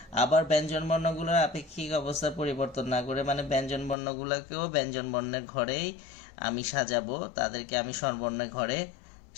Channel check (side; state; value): right; drops out; at 4.0 s